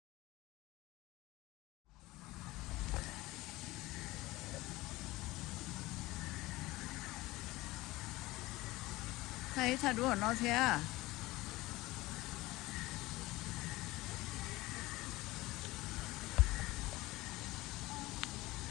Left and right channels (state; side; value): quieter; right; 19.5 dB